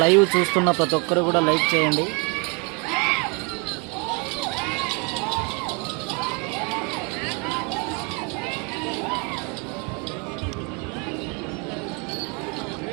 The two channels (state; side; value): quieter; left; 32.5 dB